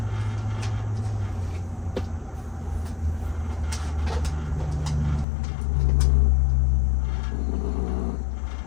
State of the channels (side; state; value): right; drops out; at 5.2 s